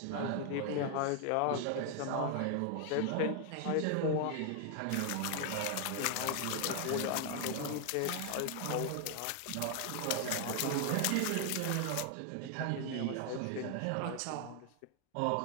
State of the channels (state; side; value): different; both; correlation 0.00